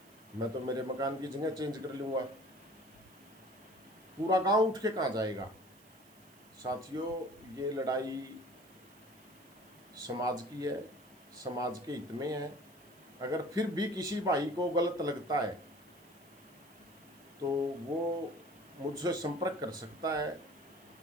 मैं तो मेरे मकान की जगह चेंज कर लूँगा, पूरा गांव उठ के कहाँ जाएगा? साथियों, ये लड़ाई समाज की है, समाज के हित में है। अगर फिर भी किसी भाई को गलत लगता है तो वो मुझसे संपर्क कर सकता है।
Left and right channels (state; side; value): noise; right; hiss, 25 dB below the sound